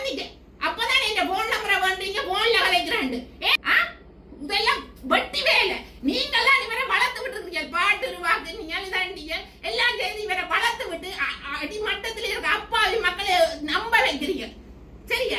அப்பதான் இந்த போன் நம்பரை வந்தீங்க, போன்ல கலைக்கிறாண்டு. இதெல்லாம் வட்டி வேலை. நீங்கெல்லாம் இவரை வளர்த்து விட்டு இருக்கீங்க, பாட்டு வாக்கு நீங்க இதாண்டிய எல்லாம் செய்து இவரை வளர்த்து விட்டு அடிமட்டத்தில் இருக்க அப்பாவி மக்களை நம்ப வைக்கிறீங்க.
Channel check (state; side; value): identical; both; correlation 1.00